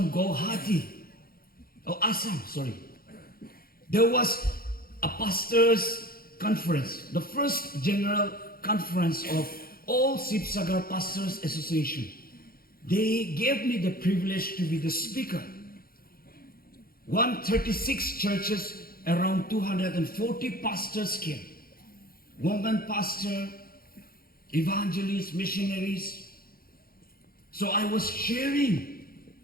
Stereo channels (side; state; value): right; late; 0.43 ms